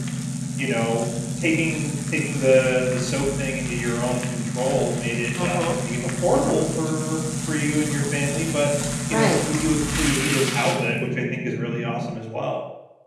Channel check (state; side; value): identical; both; correlation 1.00